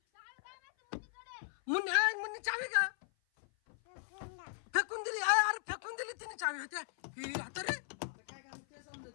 मुन्नी चावी का फेकून दिली? अरे फेकून दिली तिने चावी. होत्या हे आता रे. आता काय काम ते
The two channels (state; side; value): silent; right; 53 dB below the other